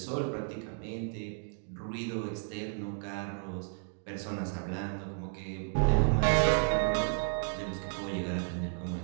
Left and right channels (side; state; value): left; silent; 56 dB below the other